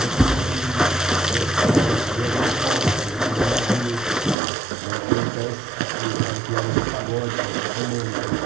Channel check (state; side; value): drops out; left; at 4.4 s